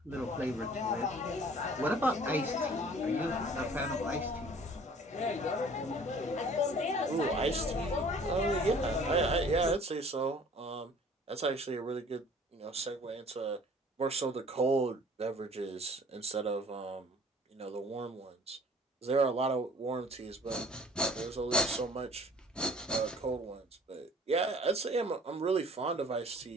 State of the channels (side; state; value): both; normal; correlation 0.51